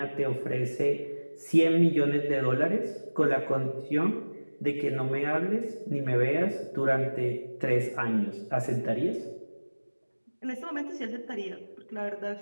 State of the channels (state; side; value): inverted; both; correlation -1.00